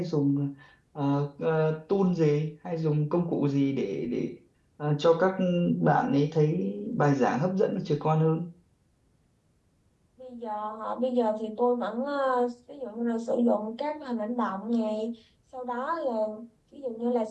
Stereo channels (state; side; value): identical; both; correlation 1.00